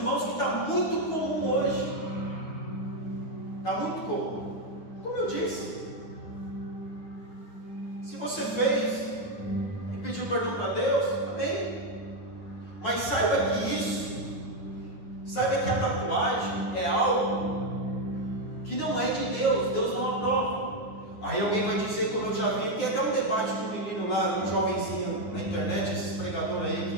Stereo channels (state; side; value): late; right; 9.6 ms